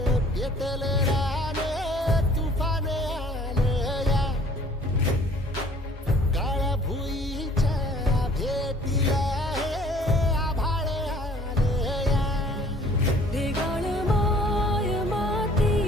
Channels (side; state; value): both; normal; correlation 0.54